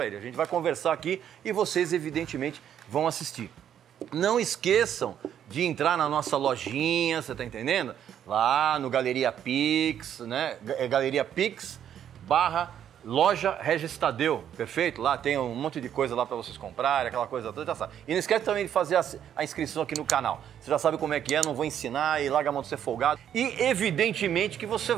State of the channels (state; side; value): quieter; left; 9.7 dB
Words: ele. A gente vai conversar aqui e vocês, evidentemente, vão assistir. Não esqueçam de entrar na nossa lojinha, você tá entendendo? Lá no Galeria Pix, né? É Galeria Pix /loja Regis Tadeu, perfeito? Lá tem um monte de coisa lá para vocês comprarem, aquela coisa toda, já sabe. E não esquece também de fazer a inscrição aqui no canal. Você já sabe como é que é, não vou ensinar e larga a mão de ser folgado. E evidentemente que você